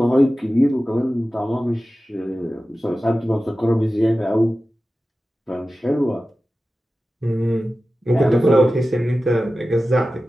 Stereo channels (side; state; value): both; normal; correlation 0.95